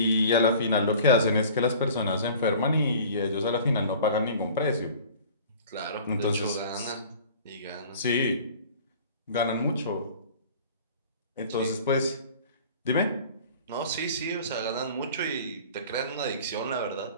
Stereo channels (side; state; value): both; inverted; correlation -0.45